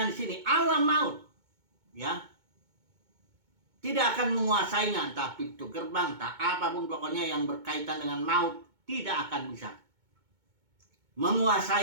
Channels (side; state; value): left; late; 2.2 ms